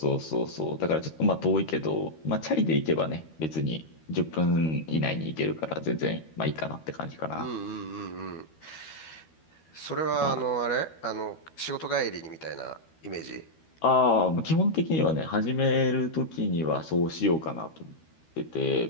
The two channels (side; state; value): right; late; 13 ms